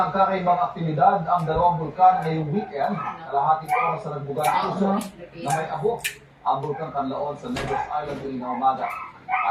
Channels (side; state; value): both; identical; correlation 1.00